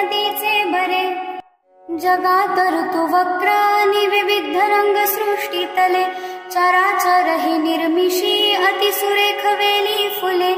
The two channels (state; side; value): identical; both; correlation 1.00